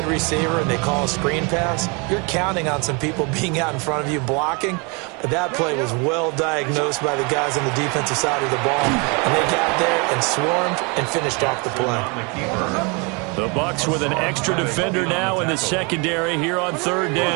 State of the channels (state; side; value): quieter; left; 31.2 dB